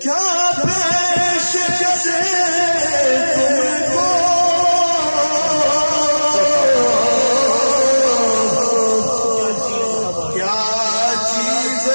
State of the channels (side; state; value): both; inverted; correlation -1.00